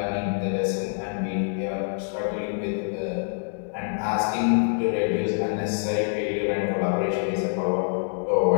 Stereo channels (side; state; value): right; silent; 61 dB below the other